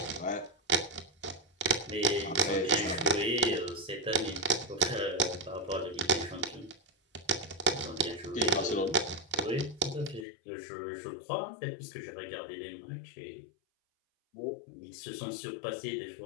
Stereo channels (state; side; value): drops out; right; at 10.2 s